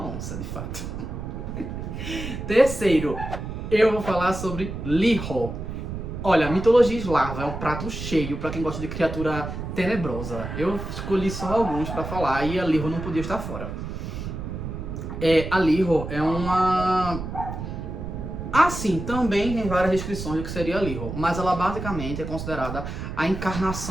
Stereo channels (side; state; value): right; noise; rumble, 7 dB below the sound